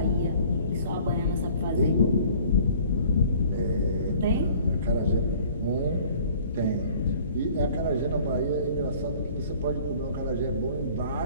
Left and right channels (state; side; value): inverted; both; correlation -0.52